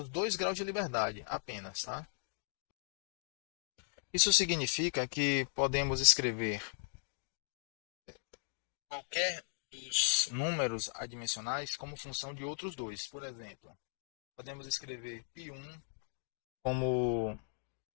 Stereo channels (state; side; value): silent; right; digital silence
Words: 2 graus de liberdade apenas. Tá? Isso significa que podemos escrever qualquer dos números adimensionais como função de outros dois. Por exemplo, podemos escrever π1 como